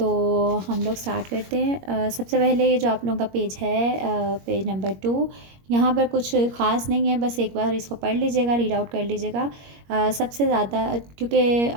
हम लोग स्टार्ट करते हैं। सबसे पहले ये जो आप लोगों का पेज है, पेज नंबर 2, यहाँ पर कुछ ख़ास नहीं है, बस एक बार इसको पढ़ लीजिएगा, रीड आउट कर लीजिएगा। सबसे ज़्यादा क्योंकि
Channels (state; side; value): late; left; 21 ms